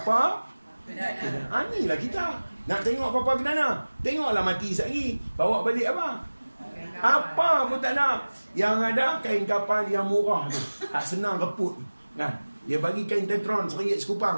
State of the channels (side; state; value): both; inverted; correlation -1.00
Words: inilah kita. Nak tengok papa ke mana? Tengoklah mati sekali. Bawa balik apa? Apa pun tak nak. Yang ada kain kapal yang murah tu. Tak senang reput. Kan? Dia bagi kain tetron RM1 sekupang